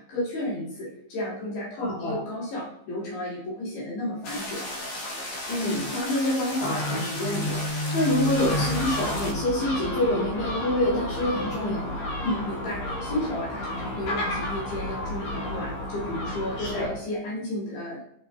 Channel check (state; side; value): late; right; 15 ms